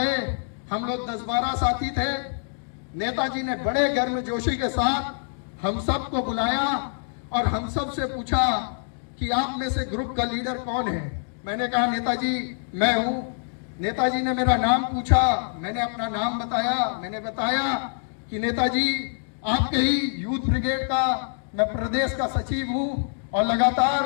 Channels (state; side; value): silent; right; digital silence